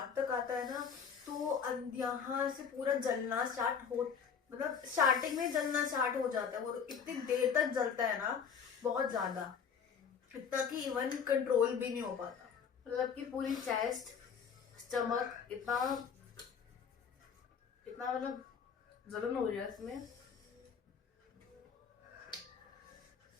तक आता है ना तो यहाँ से पूरा जलना स्टार्ट हो, मतलब स्टार्टिंग में जलना स्टार्ट हो जाता है। वो इतनी देर तक जलता है ना, बहुत ज्यादा, इतना कि इवन कंट्रोल भी नहीं हो पाता। मतलब कि पूरी चेस्ट, स्टमक इतना मतलब जलन हो रही है इसमें।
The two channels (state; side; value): quieter; right; 6.8 dB